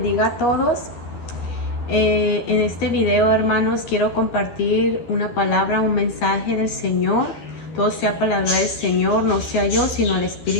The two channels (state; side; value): late; right; 13 ms